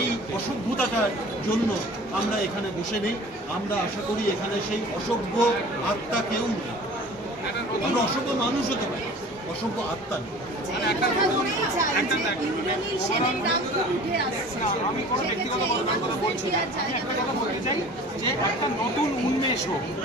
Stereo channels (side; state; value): both; normal; correlation 0.43